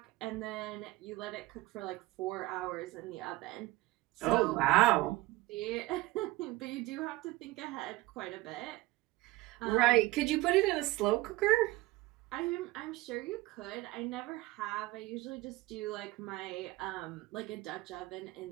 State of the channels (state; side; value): quieter; left; 19.4 dB